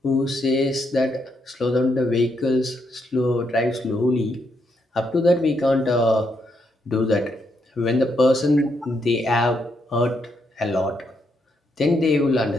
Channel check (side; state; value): both; normal; correlation 0.78